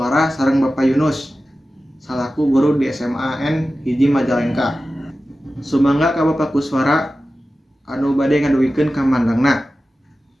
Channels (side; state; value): both; normal; correlation 0.94